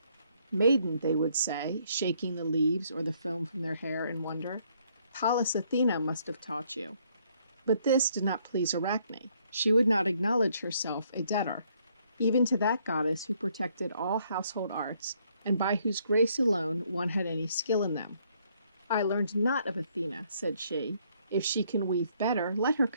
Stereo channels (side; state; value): both; inverted; correlation -0.68